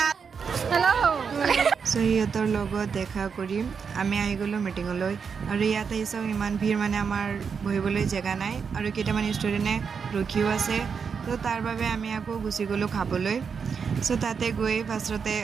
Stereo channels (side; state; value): left; quieter; 6.1 dB